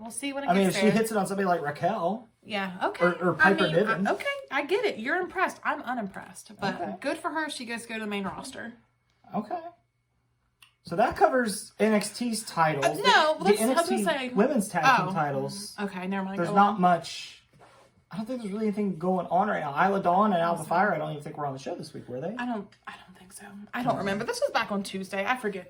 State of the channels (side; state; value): both; identical; correlation 1.00